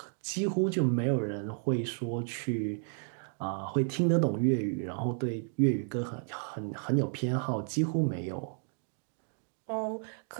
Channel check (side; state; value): left; silent; 56 dB below the other